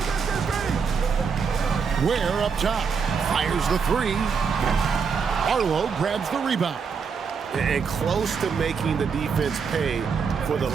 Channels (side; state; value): left; quieter; 5.8 dB